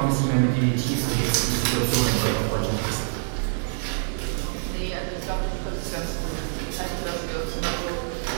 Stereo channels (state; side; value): silent; left; 61 dB below the other